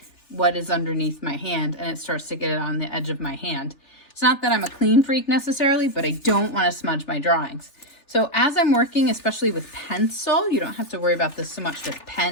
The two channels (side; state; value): right; late; 3.4 ms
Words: what is underneath my hand and it starts to get it on the edge of my hand. It's not that I'm a clean freak necessarily, but I don't want to smudge my drawings. So as I'm working, especially with pencil, you don't have to worry about this so much with